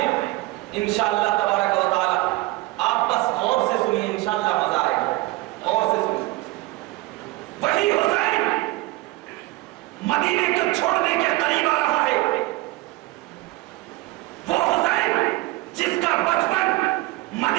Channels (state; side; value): quieter; left; 20.0 dB